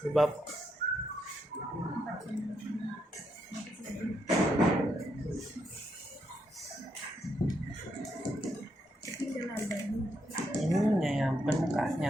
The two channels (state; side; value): normal; both; correlation 0.79